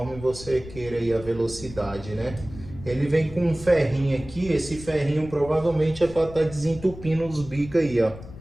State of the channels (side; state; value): left; noise; rumble, 15 dB below the sound